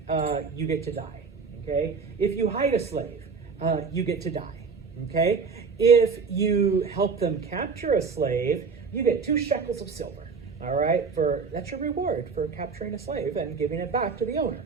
you get to die. Okay? If you hide a slave, you get to die. Okay? If you help them capture a slave, you get 2 shekels of silver. All right? That's your reward for capturing a slave and giving it back to the owner.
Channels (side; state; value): left; quieter; 5.2 dB